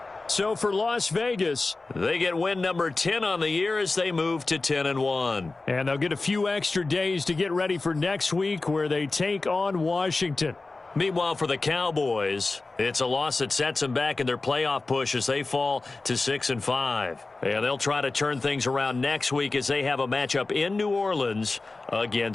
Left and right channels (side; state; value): right; quieter; 3.5 dB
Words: So for Las Vegas, they get win number 10 on the year as they move to 10-1. And they'll get a few extra days to get ready for next week, where they take on Washington. Meanwhile, for the Cowboys, it's a loss that sets them back in their playoff push as they fall to 6-5. And they'll try to turn things around next week as they have a matchup in New Orleans